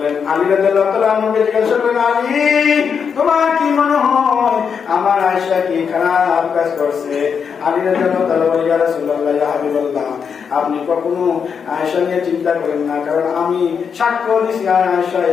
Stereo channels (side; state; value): right; quieter; 6.6 dB